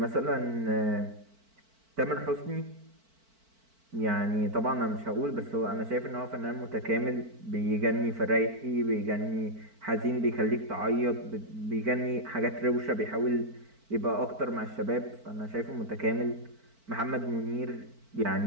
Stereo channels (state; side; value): late; left; 4.5 ms